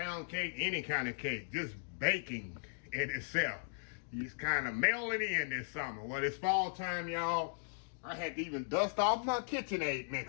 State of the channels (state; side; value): silent; right; digital silence